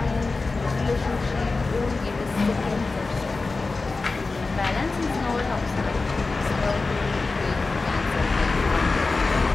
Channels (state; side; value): quieter; right; 3.8 dB